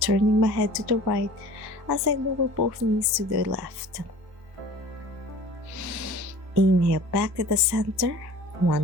my head to the right as I lower both knees to the left. Inhale, back to the center.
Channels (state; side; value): late; left; 1.2 ms